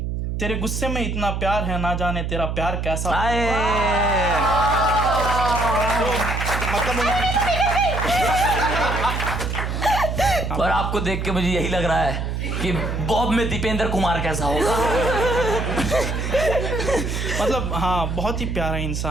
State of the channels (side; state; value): right; noise; hum, 2 dB below the sound